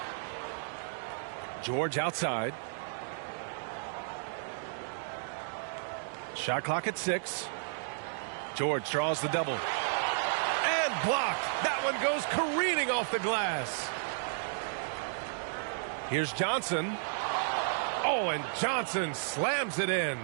George outside. Shot clock at 6. George draws the double. And blocked. That one goes careening off the glass. Here's Johnson. Oh, and Johnson slams it in.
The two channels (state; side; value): silent; left; digital silence